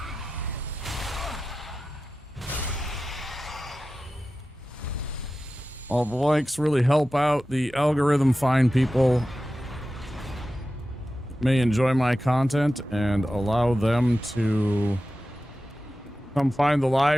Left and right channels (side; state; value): both; normal; correlation 0.94